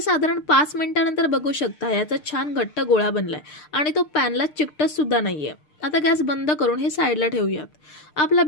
साधारण 5 मिनिटांनंतर बघू शकता याचा छान घट्ट गोळा बनलाय आणि तो पॅनला चिकटत सुद्धा नाहीये. आता गॅस बंद करून हे साईडला ठेवूयात. आपला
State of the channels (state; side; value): late; right; 6.6 ms